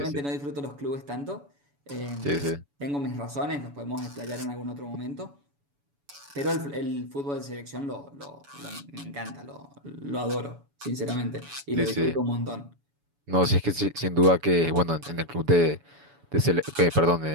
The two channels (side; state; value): left; late; 7.0 ms